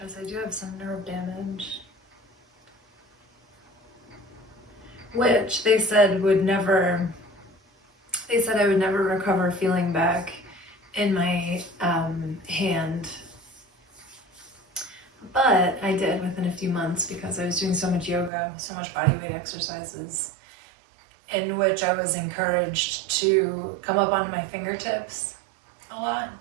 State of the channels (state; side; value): drops out; left; at 18.3 s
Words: I do have some nerve damage, which they said I would never recover feeling back in my hand. But I did within a few months because I was doing so much yoga, so much body weight exercises, in which I was encouraged to come up onto my fingertips a lot